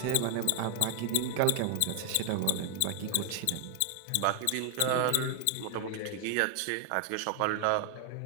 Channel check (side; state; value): both; different; correlation 0.00